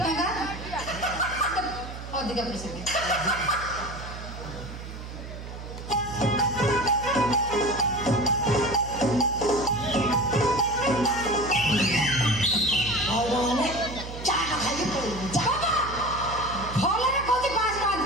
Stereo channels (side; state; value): right; noise; hum, 11 dB below the sound